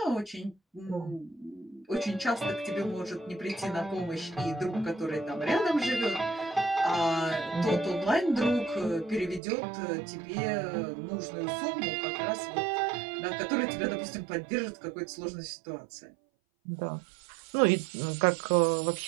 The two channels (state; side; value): drops out; left; at 9.4 s